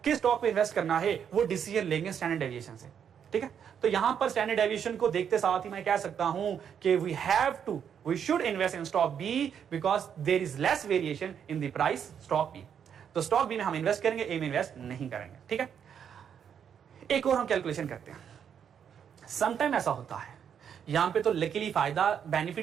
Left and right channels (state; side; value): quieter; left; 8.1 dB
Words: किस स्टॉक पे इन्वेस्ट करना है वो डिसीजन लेंगे स्टैंडर्ड डेविएशन से, ठीक है। तो यहां पर स्टैंडर्ड डेविएशन को देखते साथ ही मैं कह सकता हूं कि we should invest in stock B because there is less variation in the price stock B. तो स्टॉक बी में हम इन्वेस्ट करेंगे, ए में इन्वेस्ट नहीं करेंगे, ठीक है। एक और हम कैलकुलेशन करते हैं। समटाइम ऐसा होता है, यहां पे तो लकीली फायदा